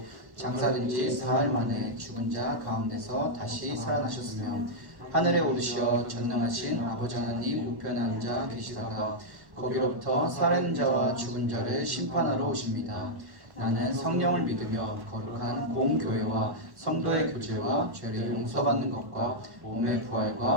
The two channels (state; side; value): late; left; 1.1 ms